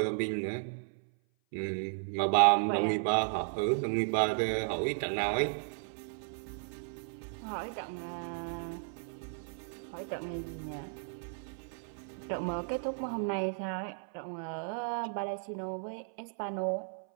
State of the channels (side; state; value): left; silent; 55 dB below the other